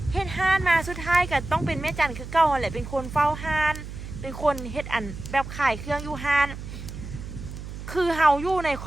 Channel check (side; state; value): right; noise; hum, 10 dB below the sound